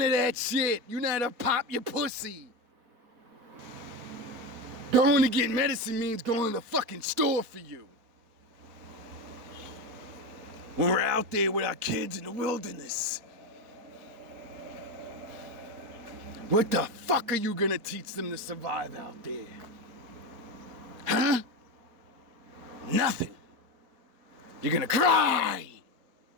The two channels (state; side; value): late; left; 4.2 ms